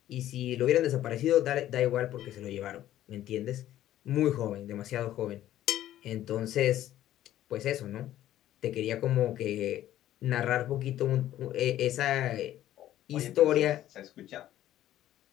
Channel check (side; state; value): right; quieter; 13.0 dB